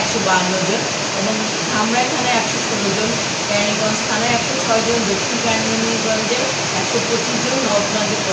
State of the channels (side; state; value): both; identical; correlation 1.00